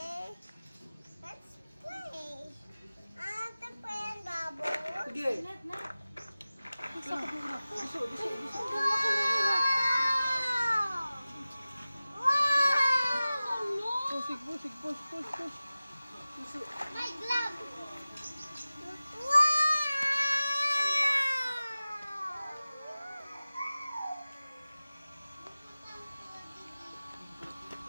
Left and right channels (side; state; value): both; inverted; correlation -0.97